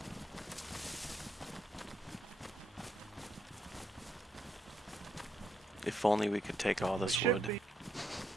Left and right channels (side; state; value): both; normal; correlation 0.78